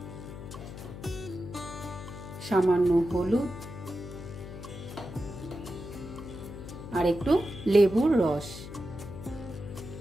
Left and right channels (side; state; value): left; noise; hum, 11 dB below the sound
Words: সামান্য হলুদ আর একটু লেবুর রস।